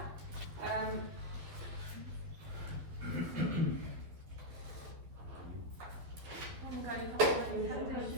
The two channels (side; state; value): left; late; 12 ms